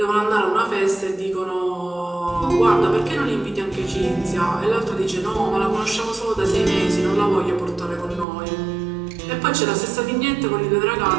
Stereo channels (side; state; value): left; drops out; at 8.2 s